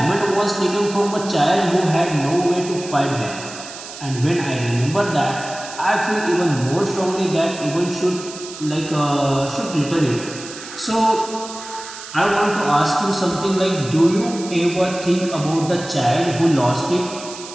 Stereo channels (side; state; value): right; noise; hiss, 13 dB below the sound